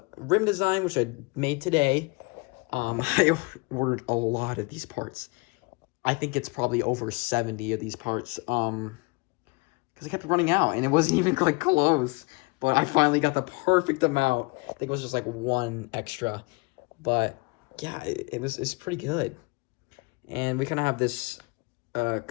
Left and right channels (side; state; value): right; quieter; 28.0 dB